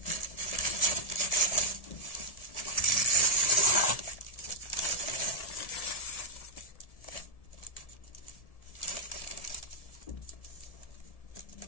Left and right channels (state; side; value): late; right; 1.7 ms